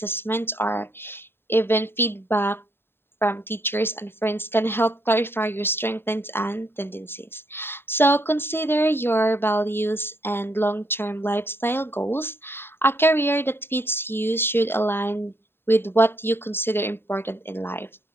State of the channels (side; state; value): right; late; 0.11 ms